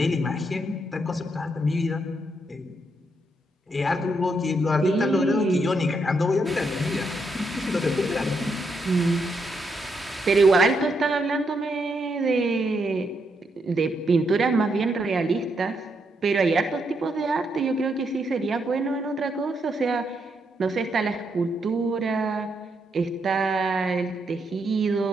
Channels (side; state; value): both; normal; correlation 0.79